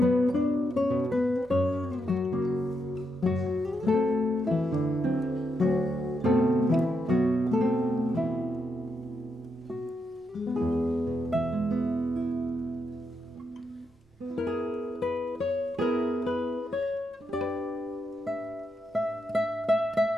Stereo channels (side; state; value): both; normal; correlation 0.82